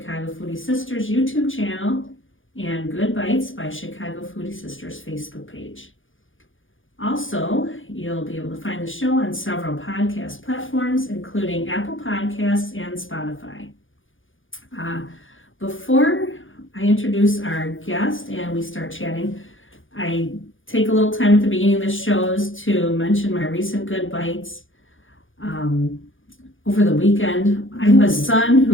Foodie Sisters YouTube channel and Good Bites by Chicago Foodie Sisters Facebook page. Also, you'll be able to find the show on several podcast platforms, including Apple Podcasts and Spotify. Before I introduce our guest and we start chatting, I take a little time at the beginning of the shows to mention my recent Good Bites. Over the weekend, I have a son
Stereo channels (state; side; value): late; right; 0.58 ms